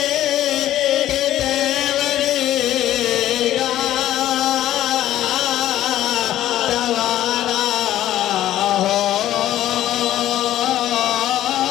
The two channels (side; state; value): right; quieter; 13.1 dB